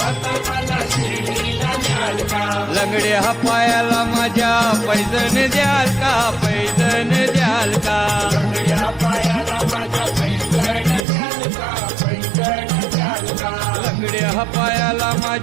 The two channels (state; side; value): drops out; left; at 11.1 s